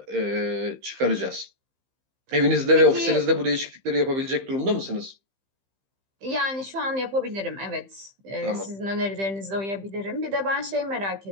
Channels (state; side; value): late; left; 15 ms